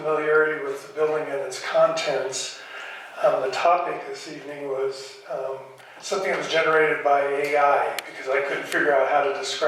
with the building and its contents. The topic this evening was something that was generated by AI because I couldn't figure out how to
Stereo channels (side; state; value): both; identical; correlation 1.00